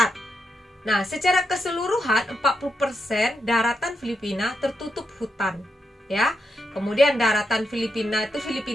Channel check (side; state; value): both; normal; correlation 0.84